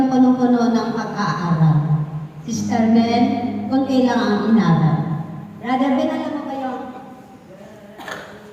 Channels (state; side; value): identical; both; correlation 1.00